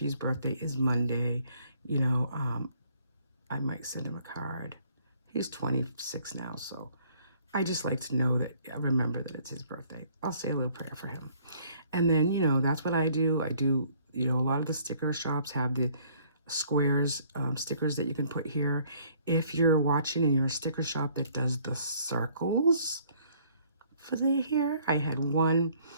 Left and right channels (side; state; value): both; inverted; correlation -0.61